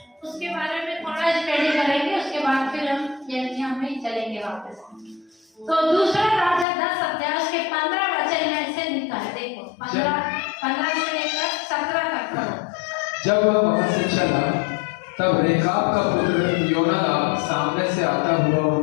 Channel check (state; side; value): drops out; right; at 6.7 s